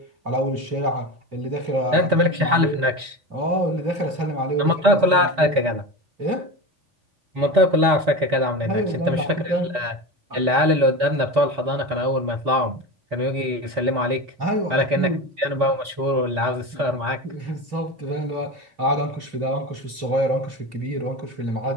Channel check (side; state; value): left; late; 4.1 ms